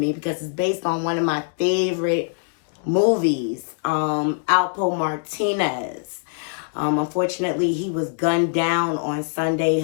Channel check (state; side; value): silent; right; digital silence